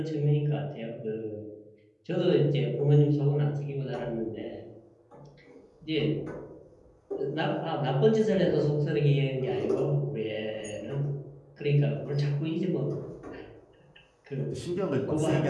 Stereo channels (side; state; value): both; identical; correlation 1.00